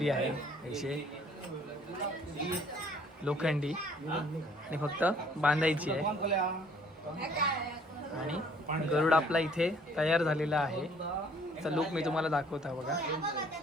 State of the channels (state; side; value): normal; both; correlation 0.59